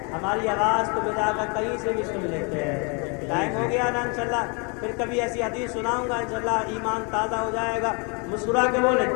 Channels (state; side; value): quieter; right; 33.4 dB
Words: ہماری آواز کو بجا کر کہیں سے بھی سن لیتے ہیں. ٹائم ہو گیا نا انشاءاللہ، پھر کبھی ایسی حدیث سناؤں گا انشاءاللہ، ایمان تازہ ہو جائے گا. مسکرا کے بولے